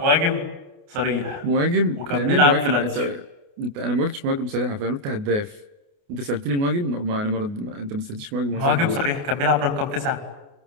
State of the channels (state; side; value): late; left; 29 ms